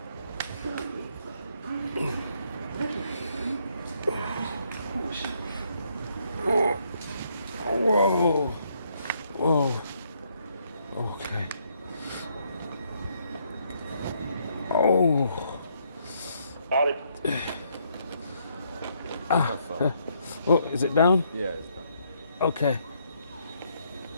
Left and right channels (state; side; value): inverted; both; correlation -0.72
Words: Whoa. Okay. Oh. Oh, is it down? Yeah, it's done. Okay.